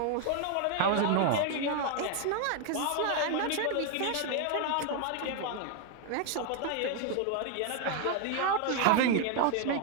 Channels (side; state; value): both; different; correlation 0.00